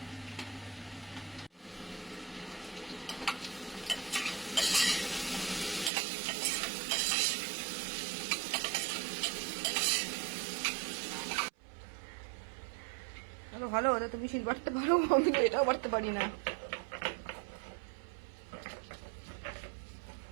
ভালো, ওটা তুমি শিল বাড়তে পারো, আমি তো এটাও বাড়তে পারি না।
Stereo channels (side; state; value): left; drops out; at 5.9 s